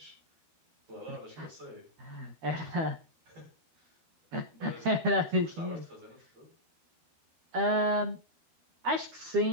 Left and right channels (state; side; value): late; left; 12 ms